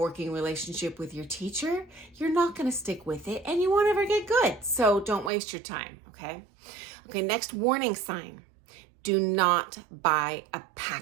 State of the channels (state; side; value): drops out; left; at 5.3 s